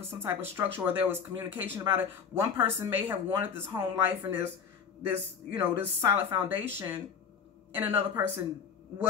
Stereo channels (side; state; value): right; quieter; 6.8 dB